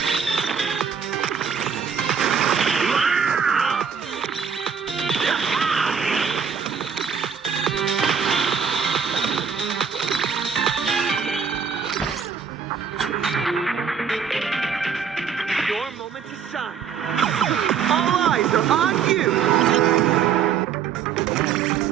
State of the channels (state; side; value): quieter; left; 6.9 dB